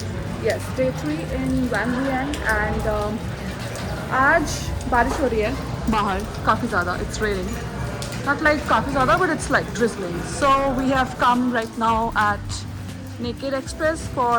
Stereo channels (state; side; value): identical; both; correlation 1.00